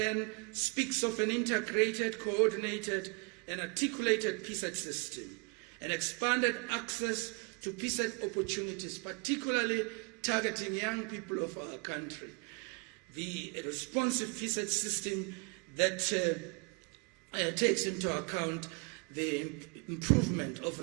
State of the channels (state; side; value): quieter; left; 34.5 dB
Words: speaks of an integrated, coordinated, and articulated PSET system, and expanded access to PSET opportunities, particularly targeting young people of our country. The responsive PSET system that takes into account the improvement